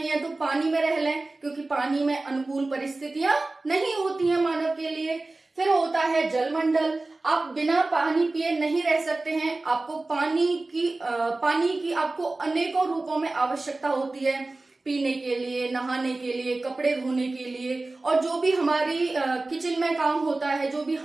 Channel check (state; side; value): quieter; left; 3.1 dB